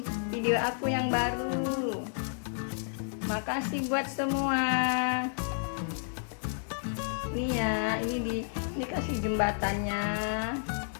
video aku yang baru. Makasih buat semua. Nih ya, ini kasih jembatannya.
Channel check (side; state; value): right; silent; digital silence